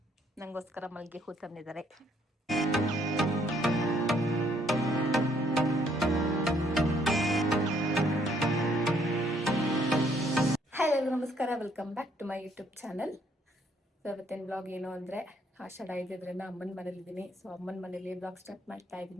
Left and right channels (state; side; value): normal; both; correlation 0.67